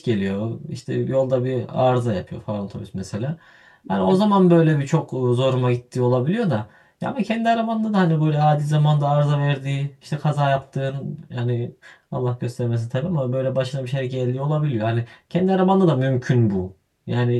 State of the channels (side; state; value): both; identical; correlation 1.00